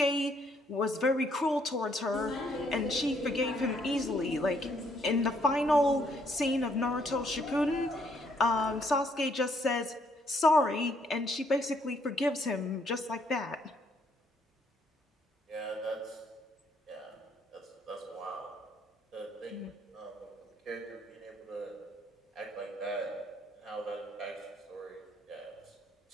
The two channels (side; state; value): both; normal; correlation 0.69